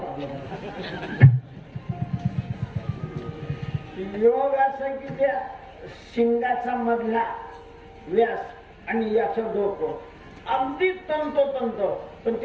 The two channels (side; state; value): both; identical; correlation 1.00